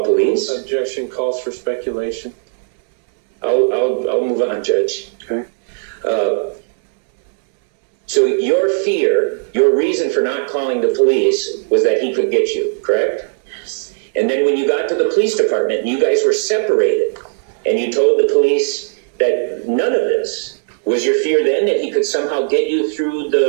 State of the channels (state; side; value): silent; left; digital silence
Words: police? Objection calls for speculation. I'll move on, Judge. Okay. So your fear, your reason for not calling the police was that he could get you, correct? Yes. And then when you got to the police department and you guys were separated and you told the police that none of this, was your fear then that he could somehow get you through